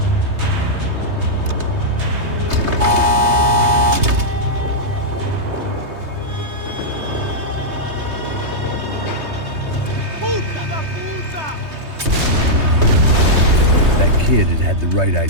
Kid had the right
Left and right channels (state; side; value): late; left; 3.2 ms